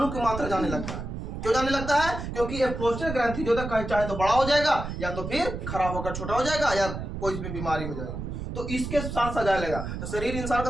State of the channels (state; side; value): noise; right; rumble, 6 dB below the sound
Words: की मात्रा जाने लगता है। क्यों जाने लगता है? क्योंकि ये प्रोस्टेट ग्रंथि जो है चाहे तो बड़ा हो जाएगा या तो फिर खराब होकर छोटा हो जाएगा या कोई इसमें बीमारी हो जाएगी, तो इसके साथ साथ जाने लगा तो शरीर इंसान का